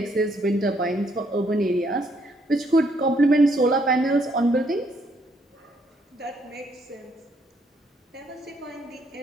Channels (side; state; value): both; normal; correlation 0.70